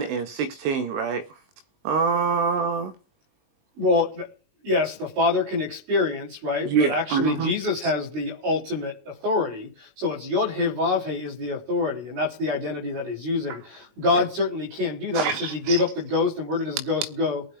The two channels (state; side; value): late; left; 20 ms